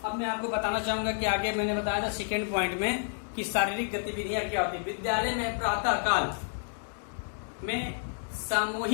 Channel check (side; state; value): right; silent; digital silence